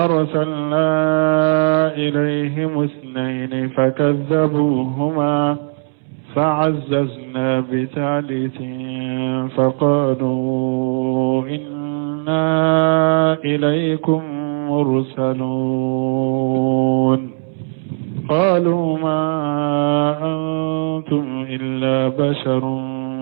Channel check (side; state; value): left; silent; 67 dB below the other